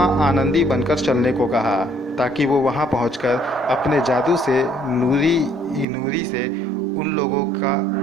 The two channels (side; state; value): left; drops out; at 5.9 s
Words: आनंदी बनकर चलने को कहा, ताकि वो वहाँ पहुँचकर अपने जादू से नूरी से उन लोगों का